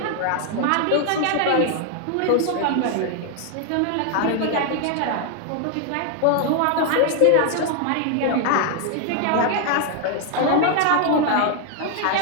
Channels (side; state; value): both; different; correlation 0.00